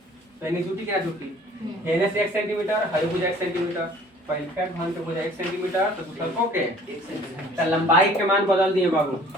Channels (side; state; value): both; normal; correlation 0.53